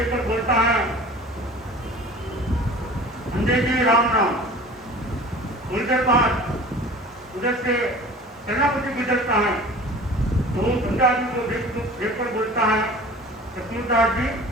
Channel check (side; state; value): both; normal; correlation 0.42